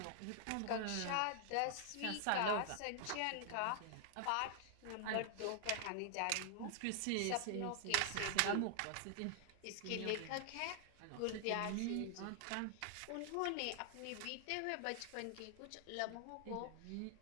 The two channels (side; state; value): both; different; correlation 0.00